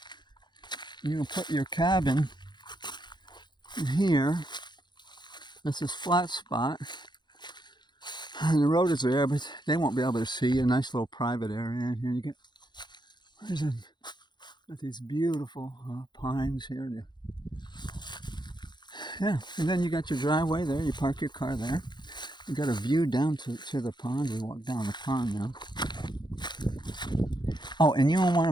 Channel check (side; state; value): right; late; 0.21 ms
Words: cabin in here. This is flat spot. And the road is there, but they won't be able to see. A nice little private area in here. You get got these beautiful pines here. Yeah, and then you got your driveway there. You park your car there. You got a view down to the pond. We walk down the pond now. Oh, and you don't want